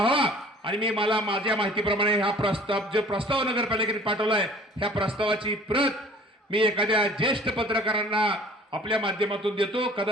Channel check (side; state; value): both; normal; correlation 0.50